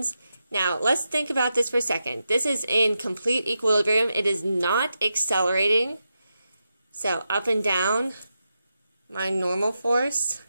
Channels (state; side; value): inverted; both; correlation -0.88